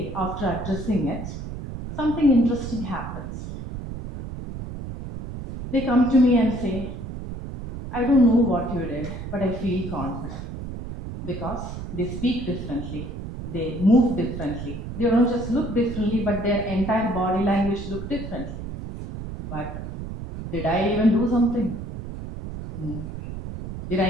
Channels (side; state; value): right; noise; rumble, 8 dB below the sound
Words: after addressing it, something interesting happens. They come to me and say, "I don't know what you did, but I feel confident." Because they speak differently, they move differently. They don't just look differently, but their entire body language look differently. But did I even do something? No. Did I